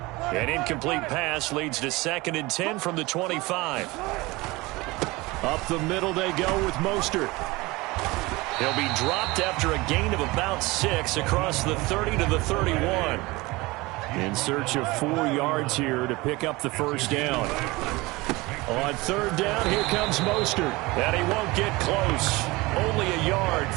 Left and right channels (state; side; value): quieter; left; 22.2 dB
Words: An incomplete pass leads to 2nd and 10 from the 25. Up the middle they go with Mostert. He'll be dropped after a gain of about 6 across the 30 to the 31. In search of 4 yards here to pick up the first down. On 3rd down, here comes Mostert. And he won't get close. Only a yard,